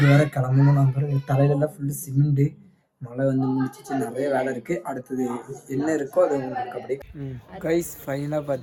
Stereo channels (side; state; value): both; identical; correlation 1.00